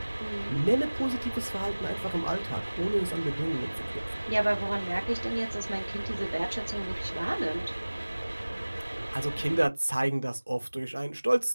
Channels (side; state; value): both; inverted; correlation -1.00